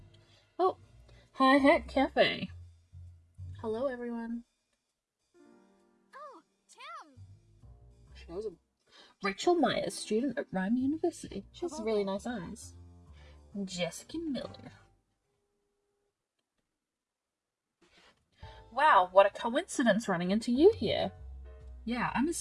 Oh, Hi Hat Cafe. Hello, everyone. Oh, Tim! She knows him. Rachel Myers, student at Rhyme University. She has really nice eyes. Jessica Miller. Wow, what a coincidence running into you here. Yeah, I'm as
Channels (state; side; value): identical; both; correlation 1.00